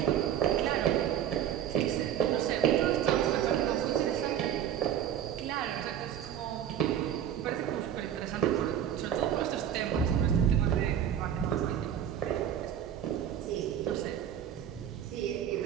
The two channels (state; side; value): quieter; left; 10.0 dB